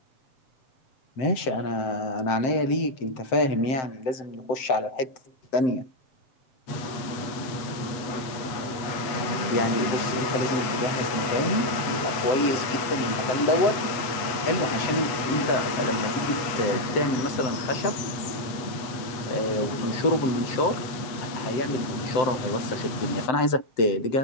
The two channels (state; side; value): late; right; 8.1 ms